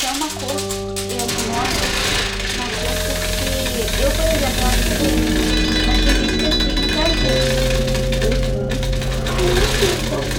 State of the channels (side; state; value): both; identical; correlation 1.00